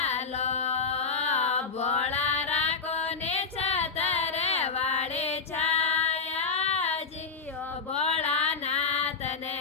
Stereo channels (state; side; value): quieter; right; 4.9 dB